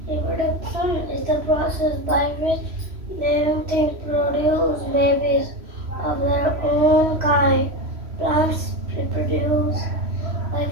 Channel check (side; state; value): left; late; 3.1 ms